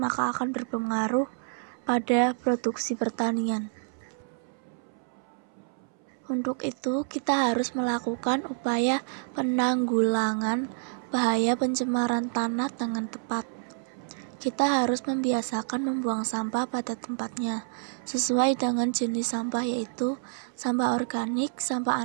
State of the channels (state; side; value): silent; left; 59 dB below the other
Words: akan berpengaruh pada produksi pertanian. Untuk itu, kita harus melakukan upaya penanggulangan bahaya pencemaran tanah dengan tepat. Kita harus membiasakan membuang sampah pada tempatnya, sesuai dengan jenis sampah yaitu sampah organik, sampah